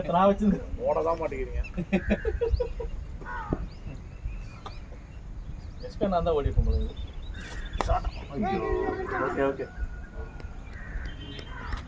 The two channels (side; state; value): both; identical; correlation 1.00